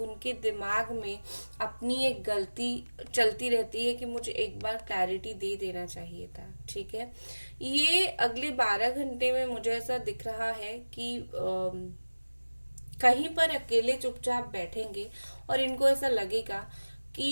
दिमाग में अपनी एक गलती चलती रहती है कि मुझे एक बार क्लैरिटी दे देना चाहिए था, ठीक है। ये अगले 12 घंटे में मुझे ऐसा दिख रहा है कि कहीं पर अकेले चुपचाप बैठेंगे और इनको ऐसा लगेगा कि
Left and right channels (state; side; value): inverted; both; correlation -1.00